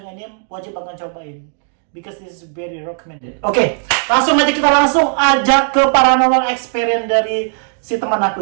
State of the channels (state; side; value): silent; left; 56 dB below the other